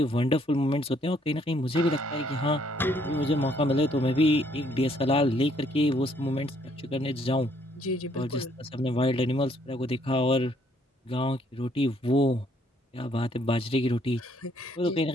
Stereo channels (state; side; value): normal; both; correlation 0.66